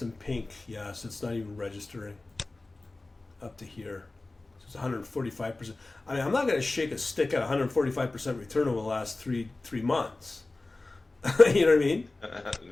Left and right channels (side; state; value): right; quieter; 3.1 dB